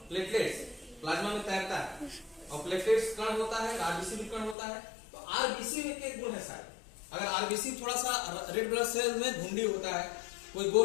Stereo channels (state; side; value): drops out; right; at 4.5 s